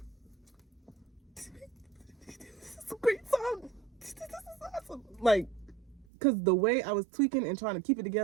this is a great song. This is awesome. Like, because the way I was tweaking and trying to keep it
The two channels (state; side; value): drops out; left; at 6.1 s